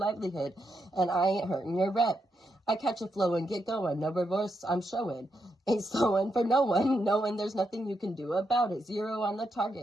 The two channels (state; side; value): normal; both; correlation 0.82